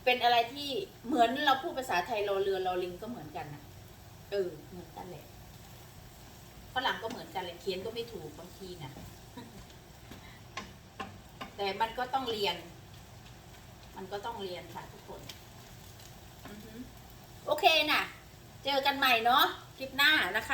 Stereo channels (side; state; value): both; identical; correlation 1.00